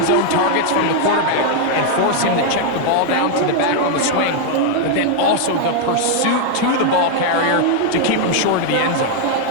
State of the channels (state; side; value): different; both; correlation 0.00